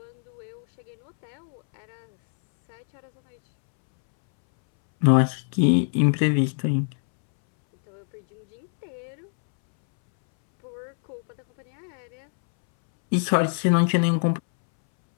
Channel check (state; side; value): silent; right; 62 dB below the other